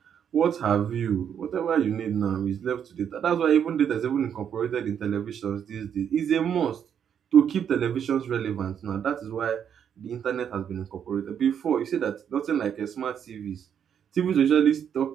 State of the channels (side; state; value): left; quieter; 8.4 dB